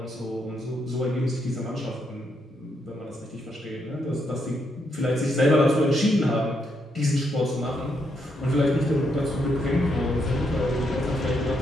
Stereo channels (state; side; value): normal; both; correlation 0.78